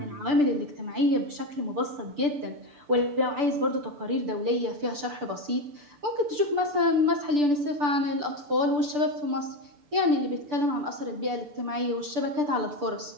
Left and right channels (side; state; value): left; late; 6.8 ms